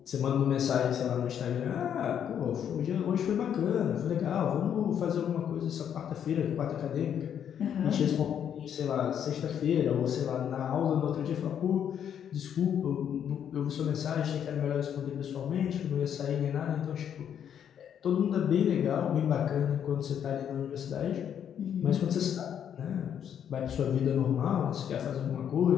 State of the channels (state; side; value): quieter; right; 8.9 dB